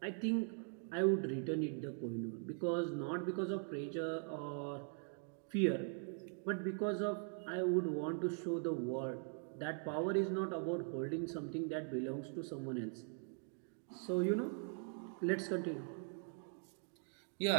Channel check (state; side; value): silent; left; 50 dB below the other